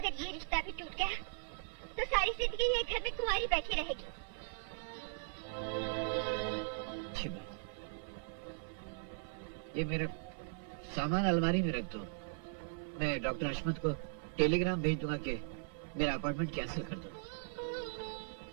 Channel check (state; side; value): silent; left; 52 dB below the other